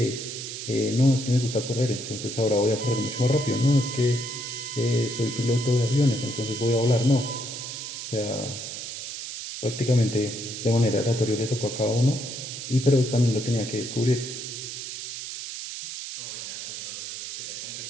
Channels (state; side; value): noise; right; hiss, 7 dB below the sound